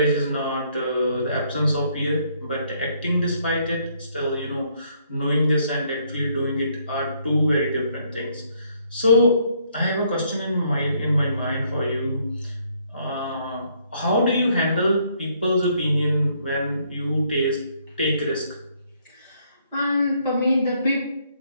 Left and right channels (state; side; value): inverted; both; correlation -0.69